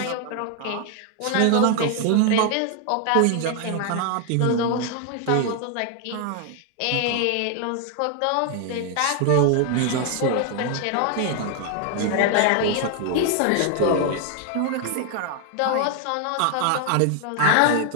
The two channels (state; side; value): different; both; correlation 0.00